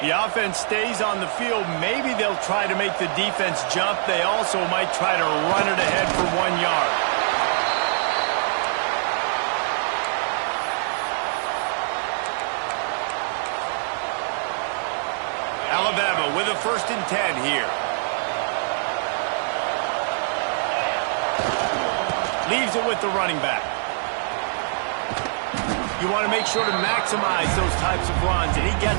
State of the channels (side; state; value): left; silent; digital silence